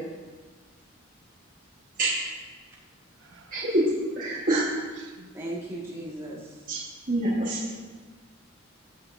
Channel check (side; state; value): both; normal; correlation 0.45